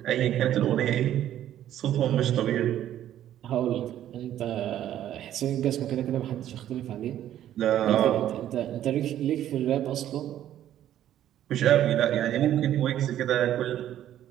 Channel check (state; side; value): quieter; left; 11.7 dB